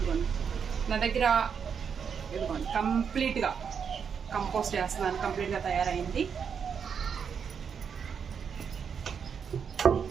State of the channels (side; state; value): left; quieter; 6.9 dB